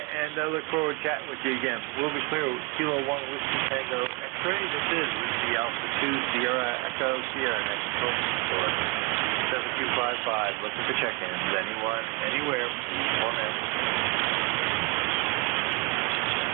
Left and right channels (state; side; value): quieter; left; 26.5 dB